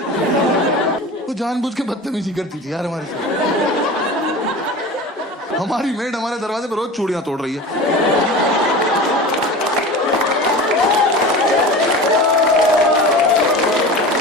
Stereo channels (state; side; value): normal; both; correlation 0.34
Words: वो जानबूझ के बदतमीजी करती थी यार हमारे साथ। हमारी मेड हमारे दरवाजे पर रोज चूड़ियां तोड़ रही है।